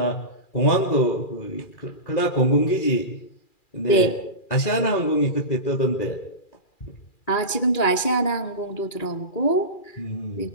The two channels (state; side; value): late; right; 2.4 ms